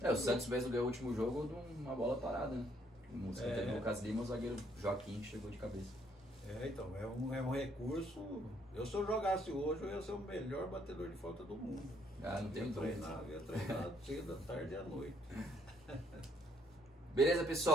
O Santos mesmo ganhou o último jogo de uma bola parada, né? O escanteio do Lucas Lima, o zagueiro Joaquim chegou de cabeça. Então, é um recurso. Se eu jogasse hoje, eu ia ser o melhor batedor de falta do mundo. Não tenho dúvida. Eu ia treinar cedo, à tarde e à noite. Beleza,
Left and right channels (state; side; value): normal; both; correlation 0.69